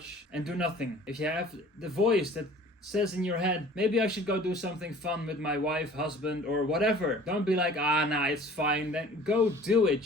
and do nothing. If you have the voice that says in your head, maybe I should go do something fun with my wife, husband, or whatever, don't be like, nah, it's fine, then go do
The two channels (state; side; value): normal; both; correlation 0.48